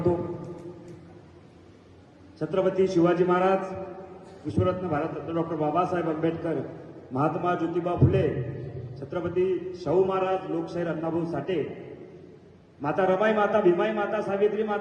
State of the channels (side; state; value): both; identical; correlation 1.00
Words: छत्रपती शिवाजी महाराज, विश्वरत्न भारतरत्न डॉक्टर बाबासाहेब आंबेडकर, महात्मा ज्योतिबा फुले, छत्रपती शाहू महाराज, लोकशाहीर अण्णाभाऊ साठे, माता रमाई माता, भीमाई माता, सावित्री